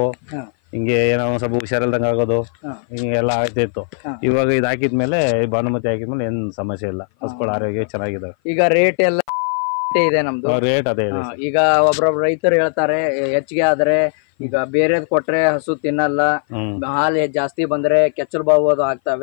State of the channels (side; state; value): right; silent; 57 dB below the other